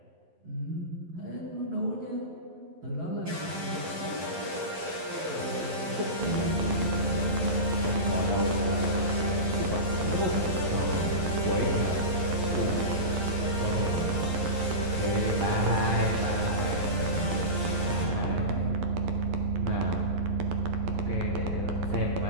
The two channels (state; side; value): late; left; 11 ms